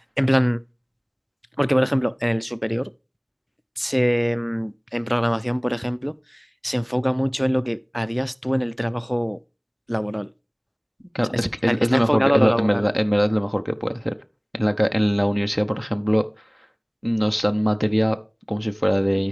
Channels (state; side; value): identical; both; correlation 1.00